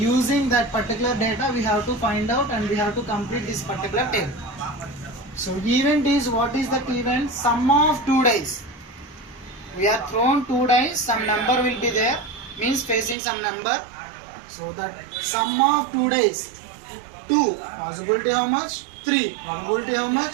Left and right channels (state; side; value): drops out; left; at 13.2 s